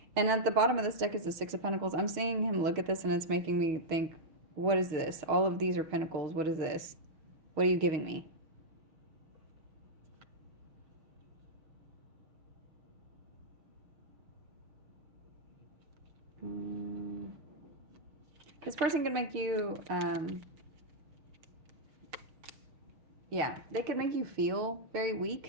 And at the bottom of this deck is the Six of Pentacles. I'm seeing him look at this, and it's making me think, what is this? All of these are pentacles. What is this? What are you giving me? This person could make you, yeah, they could make you feel very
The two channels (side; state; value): left; late; 6.2 ms